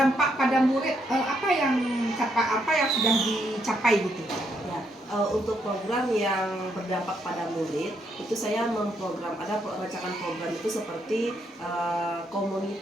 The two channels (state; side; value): normal; both; correlation 0.75